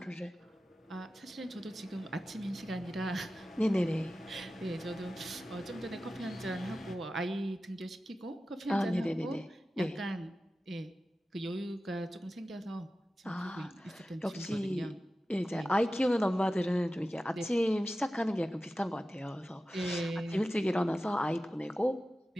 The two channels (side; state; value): both; normal; correlation 0.94